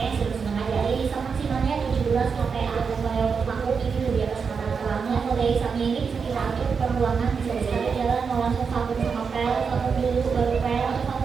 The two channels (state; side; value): quieter; left; 5.7 dB